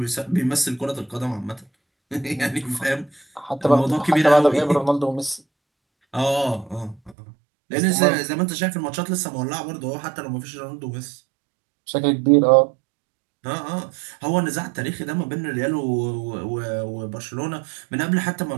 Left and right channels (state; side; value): drops out; left; at 7.2 s